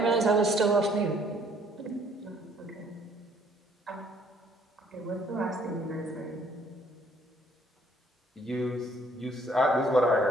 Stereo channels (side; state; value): both; normal; correlation 0.62